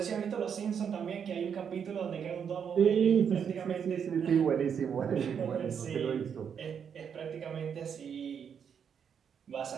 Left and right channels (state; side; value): quieter; left; 7.5 dB